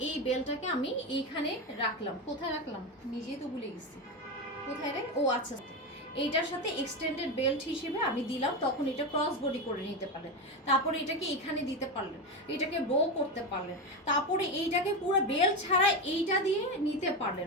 বেলটাকে আমি এইখানে রাখলাম, কোথায় রাখলাম নিজেই তো ভুলে গেছি, কোথায় রে, ও আচ্ছা এইটার সাথে এক্সটেন্ডেড বেল্ট হিসেবে আমি দিলাম, তখন এটা ক্রস বডি করে নিতে পারলেন। তারপরে এটাকে এখানে দিতে পারলেন, এটাকে বো করতে পারলেন, তারপরে এইটাকে পুরো বেল্ট ছাড়া এইটা দিয়ে নিতে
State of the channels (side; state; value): both; normal; correlation 0.15